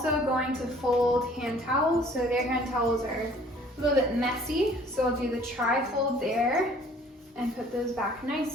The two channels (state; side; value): normal; both; correlation 0.55